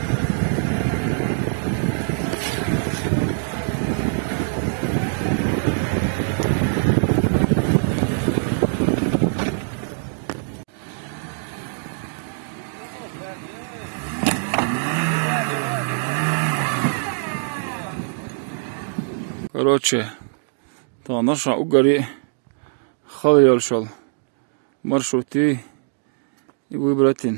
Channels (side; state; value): left; silent; digital silence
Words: Короче, та наша угори خليل شل مرشوتي